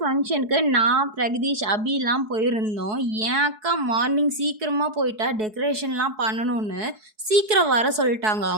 ஃபங்க்ஷனுக்கு நான், பிரகதீஷ், அபிலாம் போயிருந்தோம். என் அக்கா மார்னிங் சீக்கிரமாக போயிட்டா டெக்கரேஷன்லாம் பண்ணணும்னு சீக்கிரம் வர சொல்லிட்டாங்க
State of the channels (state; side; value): late; left; 4.7 ms